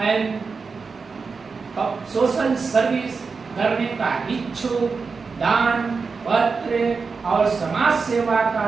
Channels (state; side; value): quieter; left; 4.8 dB